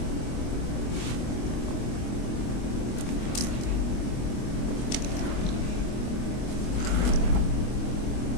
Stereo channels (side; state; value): right; late; 24 ms